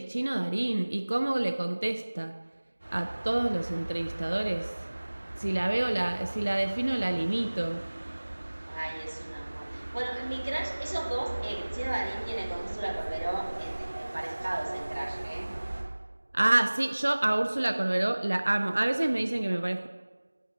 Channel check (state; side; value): inverted; both; correlation -1.00